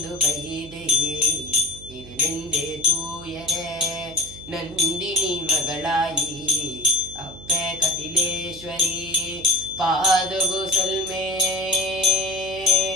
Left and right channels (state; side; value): noise; right; hum, 18 dB below the sound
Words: വൈദേ ഇരുനെന്റെ തൂയരേ. ನಂದಿನಿ ಮಗಳಾಯಿ ಅಪ್ಪೆ ಕಟಿಲೇಶ್ವರಿ ಪಾದಗು ಸಲ್ಮೆ